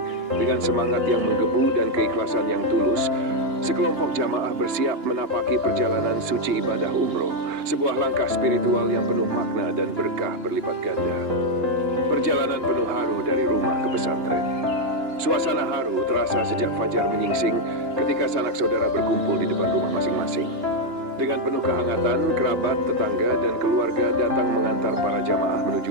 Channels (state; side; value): late; left; 2.9 ms